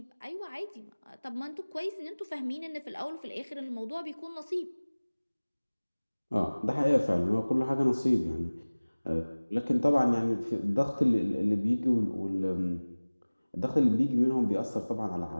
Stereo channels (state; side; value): inverted; both; correlation -1.00